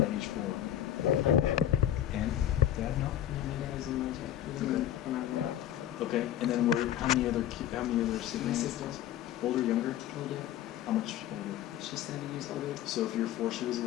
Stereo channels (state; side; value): quieter; right; 11.7 dB